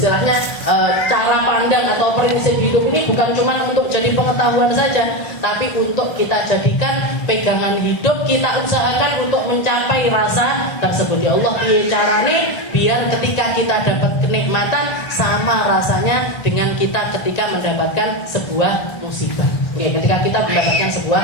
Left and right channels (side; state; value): right; late; 1.9 ms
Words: cara pandang atau prinsip hidup ini bukan cuma untuk jadi pengetahuan saja, tapi untuk kita jadikan pegangan hidup, kita usahakan untuk mencapai rasa tersebut. Ya Allah, piye carane biar ketika kita dapat kenikmatan sama rasanya dengan kita ketika mendapatkan sebuah musibah. Ketika kita mendapatkan sebuah